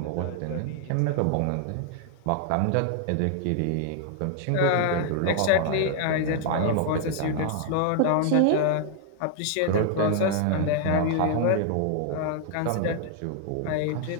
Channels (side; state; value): both; different; correlation 0.00